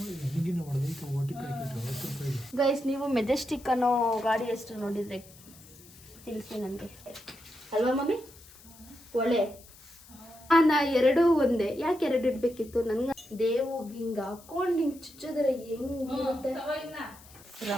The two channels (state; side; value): noise; left; hiss, 22 dB below the sound